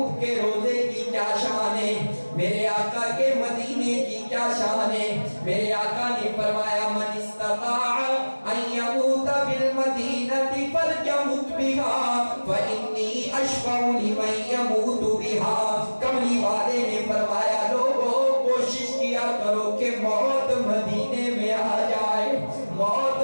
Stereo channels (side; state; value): both; inverted; correlation -1.00